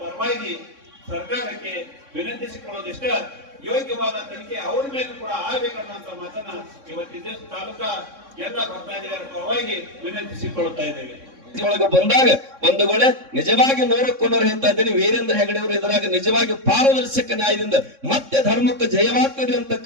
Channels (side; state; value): left; late; 3.6 ms